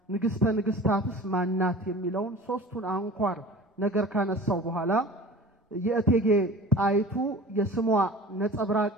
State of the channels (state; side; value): normal; both; correlation 0.40